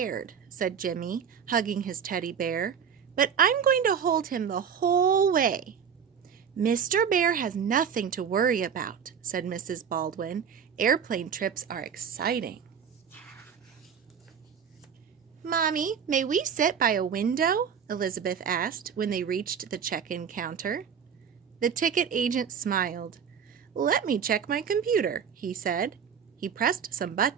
said Jimmy, hugging his teddy bear, but I'm going to hold him the whole way. Mr. Bear has nothing to worry about, said Mrs. Baldwin. Airplane trips are exciting. Mommy, may we sit by a window? Elizabeth asked when they reached the check-in counter. The ticket agent smiled. Let me check my computer, he said. He pressed some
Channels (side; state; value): left; quieter; 7.3 dB